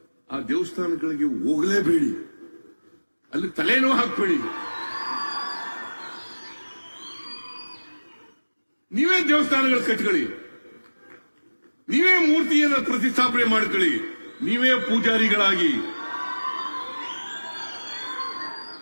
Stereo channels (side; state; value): both; inverted; correlation -1.00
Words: ಆ ದೇವಸ್ಥಾನಗಳಿಗೆ ಹೋಗಲೇಬೇಡಿ, ಅಲ್ಲಿ ತಲೆನೂ ಹಾಕ್ಬೇಡಿ. ನೀವೇ ದೇವಸ್ಥಾನಗಳು ಕಟ್ಕೊಳ್ಳಿ, ನೀವೇ ಮೂರ್ತಿಯನ್ನು ಪ್ರತಿಷ್ಠಾಪನೆ ಮಾಡ್ಕೊಳ್ಳಿ, ನೀವೇ ಪೂಜಾರಿಗಳಾಗಿ,